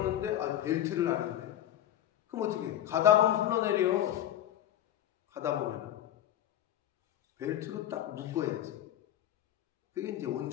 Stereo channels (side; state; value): right; quieter; 11.7 dB